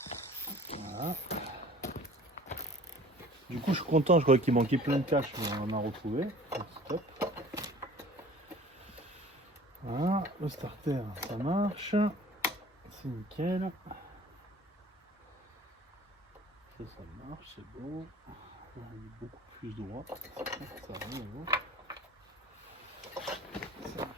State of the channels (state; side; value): normal; both; correlation 0.47